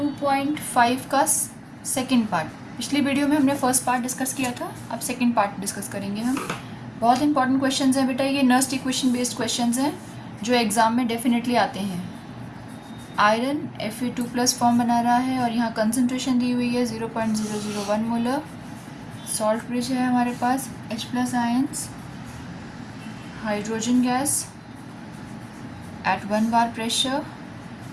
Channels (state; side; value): identical; both; correlation 1.00